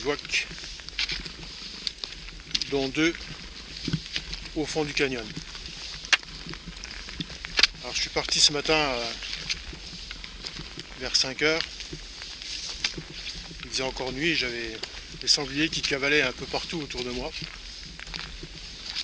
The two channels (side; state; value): both; identical; correlation 1.00